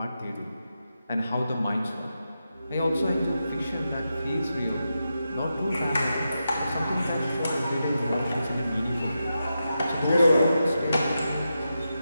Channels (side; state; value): both; inverted; correlation -0.88